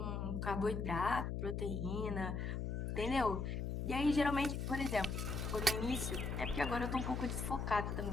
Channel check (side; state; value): left; noise; hum, 2 dB below the sound